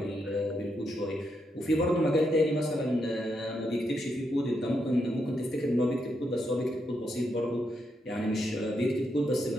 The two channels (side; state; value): both; normal; correlation 0.81